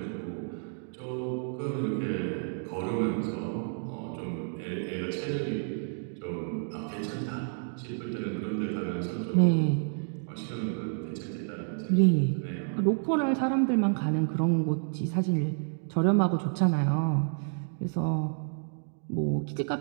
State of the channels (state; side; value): silent; left; 58 dB below the other